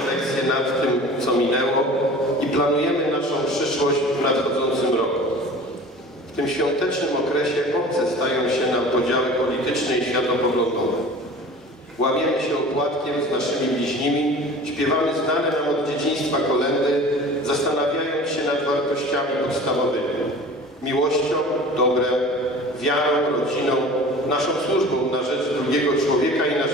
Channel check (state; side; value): normal; both; correlation 0.41